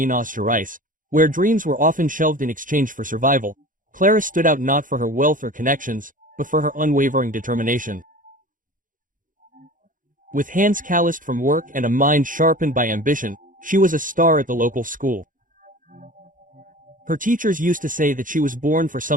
Gerais, where dreams were often shelved in exchange for survival, Clara stood out not for her wealth or connections, but for her unwavering determination. With hands calloused from work and a mind sharpened by ambition, she was a star at the local school. Her teachers used to say that she was born for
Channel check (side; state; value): left; late; 0.39 ms